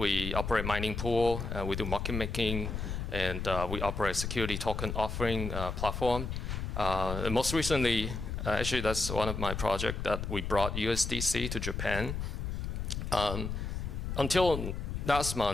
operate mining pool. We do market making, and we operate security token offering platform. And most recently, actually that's one of my projects that we brought USDC to Japan. Until last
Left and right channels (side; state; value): left; noise; rumble, 4 dB below the sound